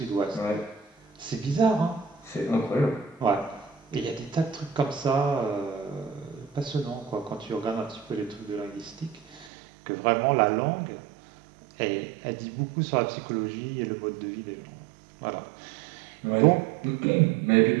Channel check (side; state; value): left; drops out; at 9.5 s